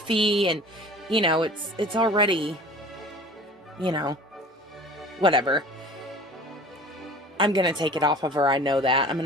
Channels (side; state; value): both; normal; correlation 0.43